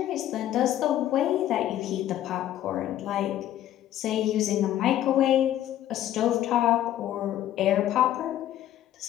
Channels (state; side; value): quieter; right; 12.4 dB